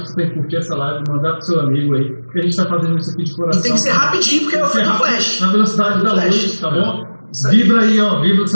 você tem que curtir essa live, mandar pro seu amigo aí, porque a gente tá fazendo isso aqui de coração. E tem que ser rapidinho, porque é o filme do Flash. Na velocidade da luz, tá bom? Vibra aí, ó, vibra o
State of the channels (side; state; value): both; inverted; correlation -1.00